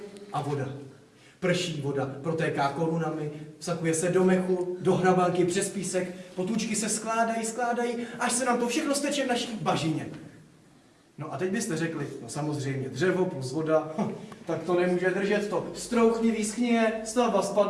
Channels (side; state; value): both; identical; correlation 1.00